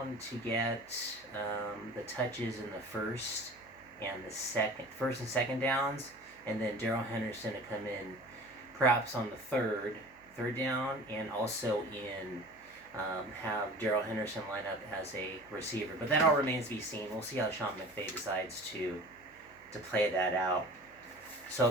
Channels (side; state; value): right; noise; hum, 30 dB below the sound